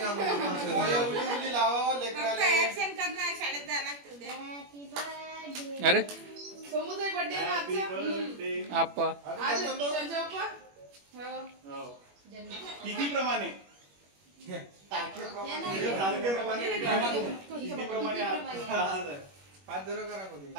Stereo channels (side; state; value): left; late; 21 ms